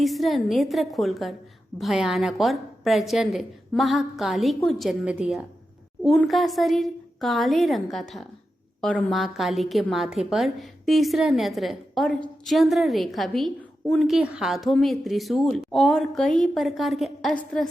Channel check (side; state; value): both; normal; correlation 0.90